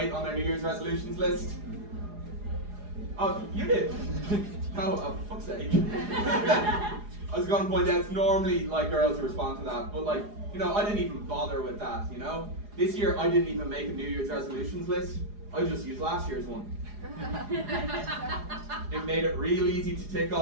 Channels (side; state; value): left; late; 4.8 ms